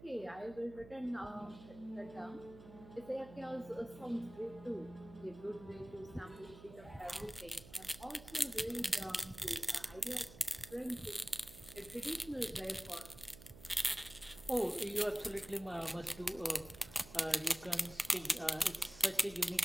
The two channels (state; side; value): noise; right; hum, 17 dB below the sound